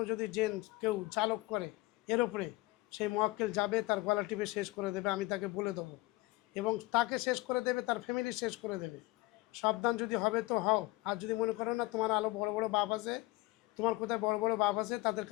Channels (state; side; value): quieter; right; 20.6 dB